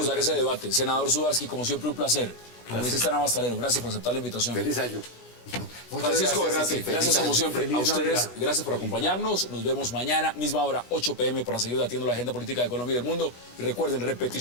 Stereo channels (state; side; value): late; right; 26 ms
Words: dar ese educativos. debate. Senador Sudarsky, como siempre, un placer. Congresista Navastalero, gracias por aceptar la invitación. Feliz año. Muchas Francisco gracias, Bernate, Ceci. gracias Feliz como año. siempre. Feliz A ustedes, Navidad. gracias por acompañarnos. Nos vemos mañana, misma hora, 8 p.m. para seguir debatiendo la agenda política de Colombia y del mundo. Y recuerden,